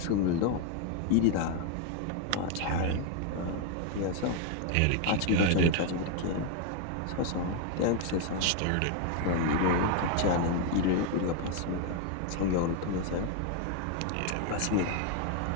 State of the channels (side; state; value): both; different; correlation 0.01